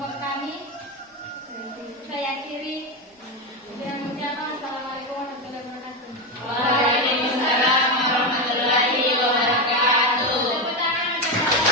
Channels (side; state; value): both; normal; correlation 0.12